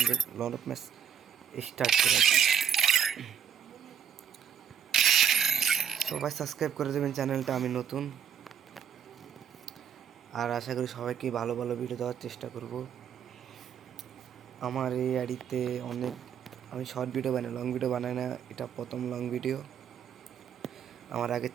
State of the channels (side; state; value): left; quieter; 8.2 dB